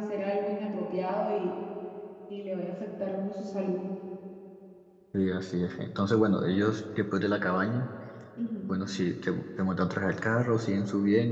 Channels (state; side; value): identical; both; correlation 1.00